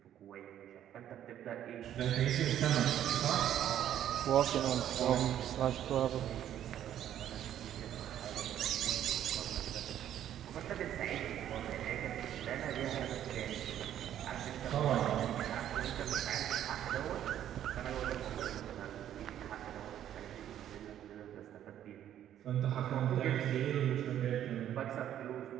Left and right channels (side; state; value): left; quieter; 11.0 dB